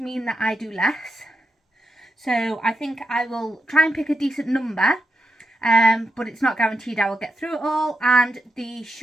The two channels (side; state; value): both; normal; correlation 0.86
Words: mean that I do less. So I think I will try and pick a decent number, but it's not guaranteed I will get through it all. And the